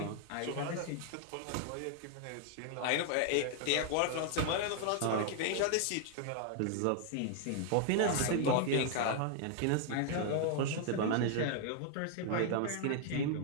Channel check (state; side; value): different; both; correlation 0.00